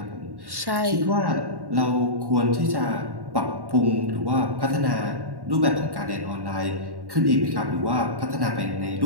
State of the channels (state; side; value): late; left; 1.1 ms